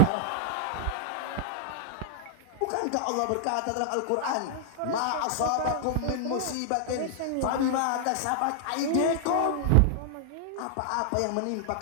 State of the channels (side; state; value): both; different; correlation -0.01